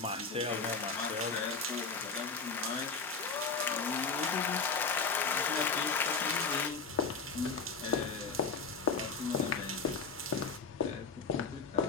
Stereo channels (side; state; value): right; quieter; 4.8 dB